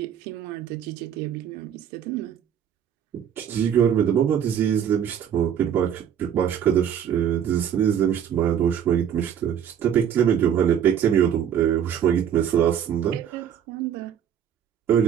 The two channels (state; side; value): quieter; left; 9.0 dB